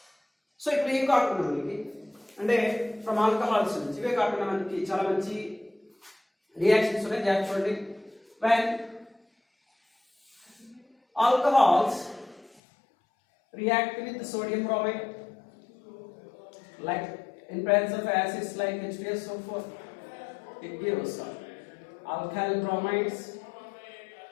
So ఇప్పుడు ఏం కాకుండా మనకి అంటే ఫ్రమ్ ఆల్కహాల్స్ నుంచి ఇవే కాకుండా మనకి చాలా మంచి రియాక్షన్స్ ఉన్నాయి. చూడండి, when alcohols react with sodium bromide, like in presence of acids like H2SO4, it gives alkyl bromides.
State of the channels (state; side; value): drops out; right; at 12.6 s